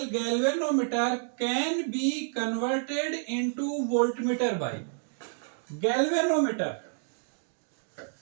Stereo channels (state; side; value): silent; left; digital silence